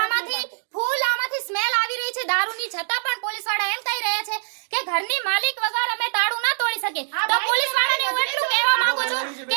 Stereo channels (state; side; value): silent; left; digital silence